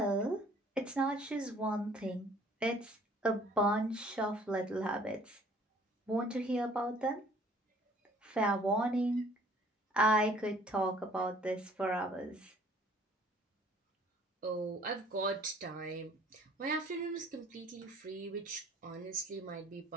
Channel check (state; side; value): normal; both; correlation 0.56